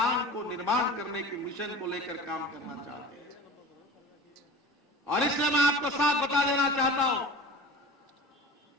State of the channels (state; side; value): normal; both; correlation 0.36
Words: को निर्माण करने की मिशन को लेकर काम करना चाहते हैं। और इसलिए मैं आपको साफ बता देना चाहता हूं